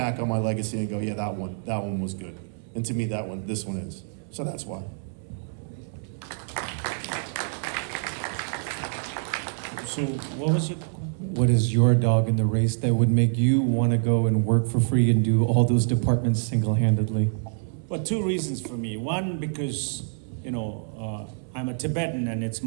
on my legacy and go, yeah, that one was good. And to me, this one is. So that's why. So what was your? What is your dog in the race that would make you want to go and work for free and do all those departments single-handedly? Well, two reasons for me. One, because I'm a Tibetan, and it's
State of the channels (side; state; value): left; silent; 61 dB below the other